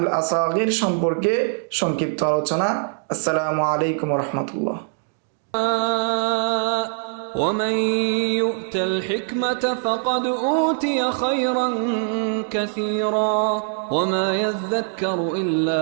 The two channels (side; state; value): left; silent; digital silence